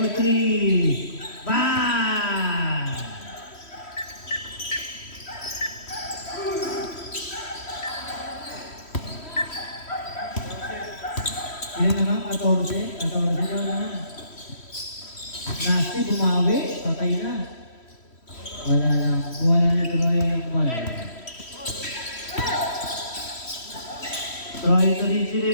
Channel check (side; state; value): right; late; 3.1 ms